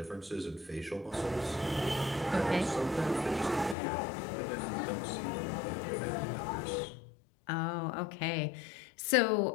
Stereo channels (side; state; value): right; drops out; at 3.8 s